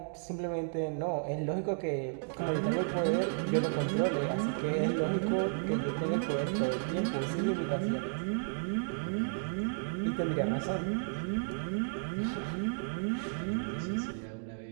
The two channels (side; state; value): left; silent; digital silence